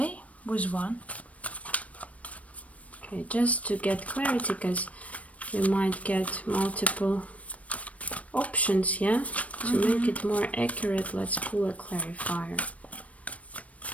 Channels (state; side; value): late; right; 0.066 ms